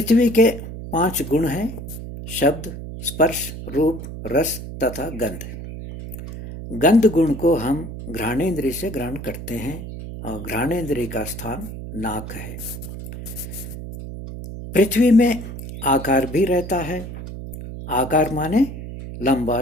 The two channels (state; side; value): noise; right; hum, 10 dB below the sound